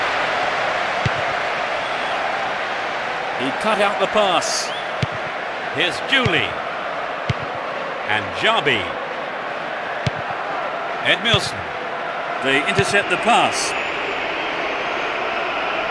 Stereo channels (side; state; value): both; identical; correlation 1.00